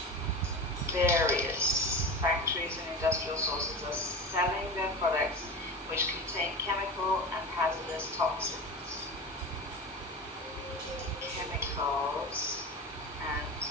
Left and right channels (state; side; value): normal; both; correlation 0.27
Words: various factories and industrial sources are selling their products which contain chemical and hazardous toxins. Chemicals and